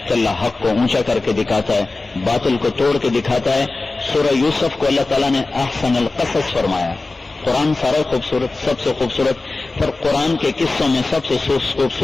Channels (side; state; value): right; quieter; 3.4 dB